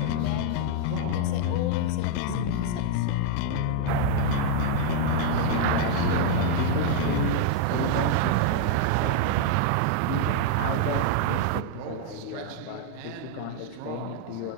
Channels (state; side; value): different; both; correlation 0.00